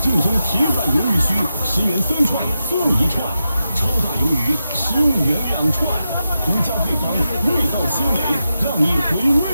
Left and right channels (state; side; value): inverted; both; correlation -0.89